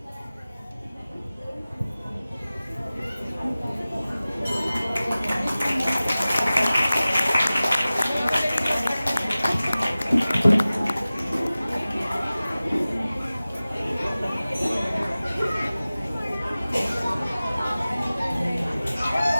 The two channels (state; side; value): inverted; both; correlation -0.97